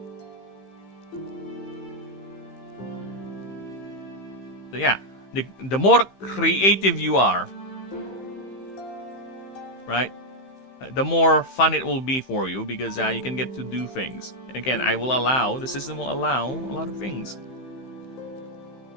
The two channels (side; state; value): right; late; 15 ms